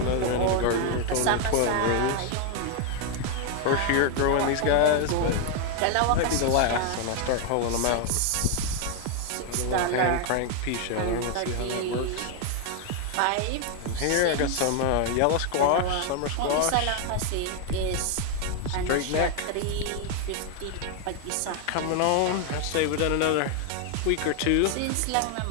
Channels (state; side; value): different; both; correlation 0.01